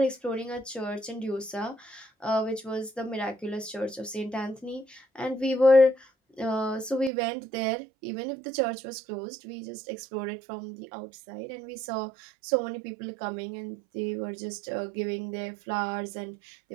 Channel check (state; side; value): drops out; left; at 7.1 s